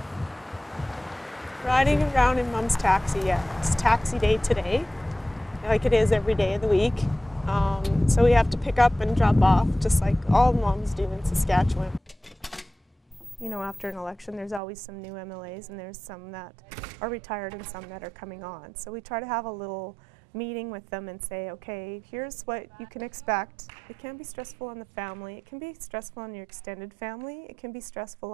Riding around in Mom's taxi, yeah. It's taxi day today, like it is every day of the week. So we have to pick up and drop off, just like all moms do in Saskatchewan. You know, after an election, there's always some new MLAs, and there's some that are retired and some that are coming on. So we try to have a little meeting with them and say, okay, here's what you can expect. It can be stressful on the family. It can be stressful on your extended family. It can be stressful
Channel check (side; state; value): left; drops out; at 14.6 s